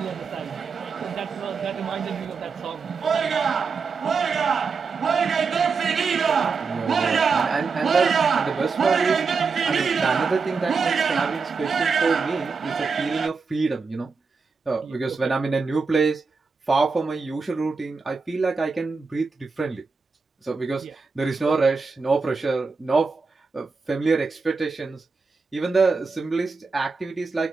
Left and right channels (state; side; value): quieter; left; 4.8 dB